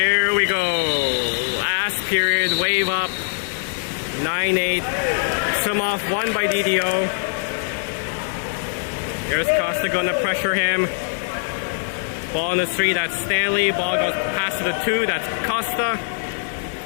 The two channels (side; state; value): right; silent; digital silence